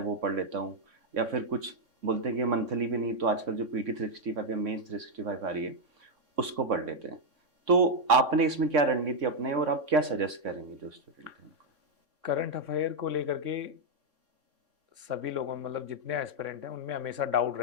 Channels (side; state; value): left; late; 3.6 ms